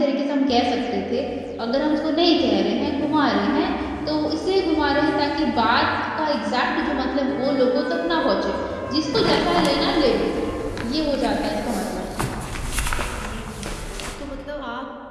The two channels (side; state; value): both; identical; correlation 1.00